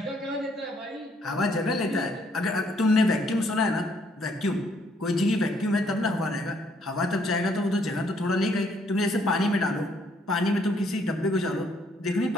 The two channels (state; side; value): normal; both; correlation 0.68